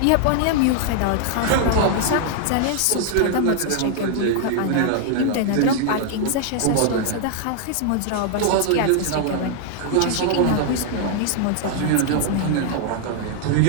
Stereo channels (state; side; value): different; both; correlation 0.00